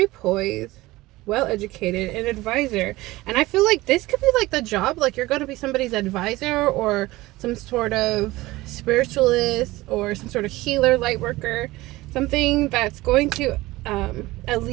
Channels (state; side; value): quieter; left; 19.1 dB